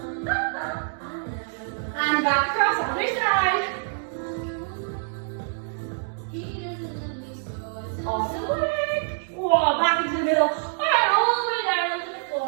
And back across the other side. Awesome work. Whoa, back into the middle. Alright, all the way down onto the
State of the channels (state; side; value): silent; left; 61 dB below the other